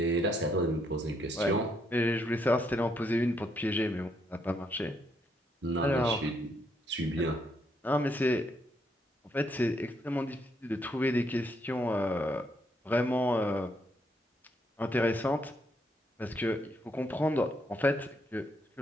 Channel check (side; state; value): both; normal; correlation 0.74